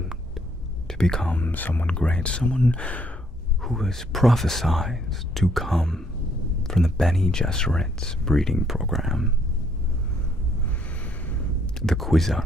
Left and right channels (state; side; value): normal; both; correlation 0.68